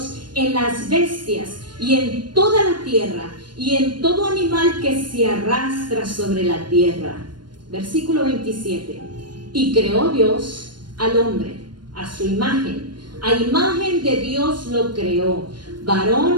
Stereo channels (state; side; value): late; left; 0.71 ms